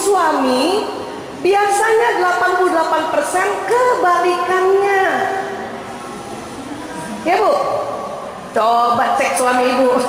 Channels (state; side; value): identical; both; correlation 1.00